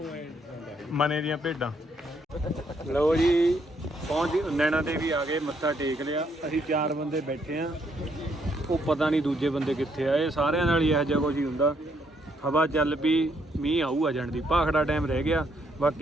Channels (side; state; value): both; normal; correlation 0.72